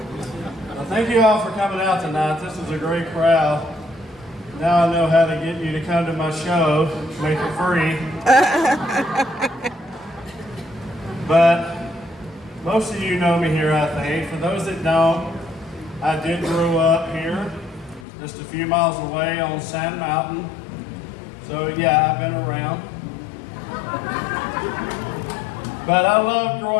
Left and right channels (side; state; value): right; drops out; at 18.1 s